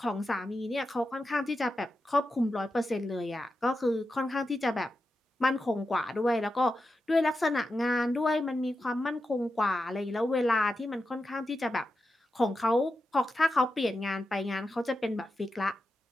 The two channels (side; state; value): both; normal; correlation 0.89